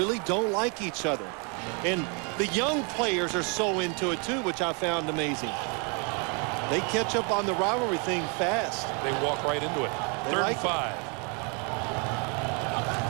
don't like each other. And the young players are so into it, too, which I found amazing. They catch up on the rivalry thing fast. They walk right into it. 3rd and 5.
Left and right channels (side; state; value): left; quieter; 34.6 dB